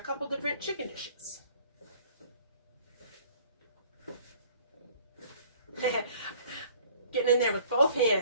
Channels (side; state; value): both; inverted; correlation -0.54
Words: different chicken dishes. Getting in there with both